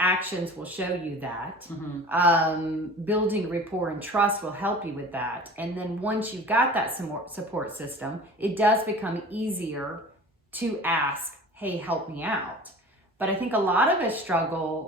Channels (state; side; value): normal; both; correlation 0.40